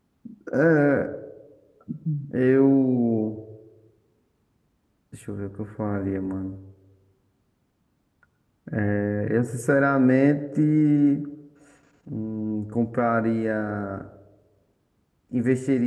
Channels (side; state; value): both; identical; correlation 1.00